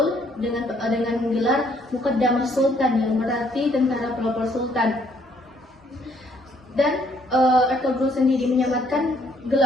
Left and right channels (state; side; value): normal; both; correlation 0.67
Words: dengan gelar Muqaddamah Sultan, yang berarti tentara pelopor Sultan. Dan Ertugrul sendiri menyamatkan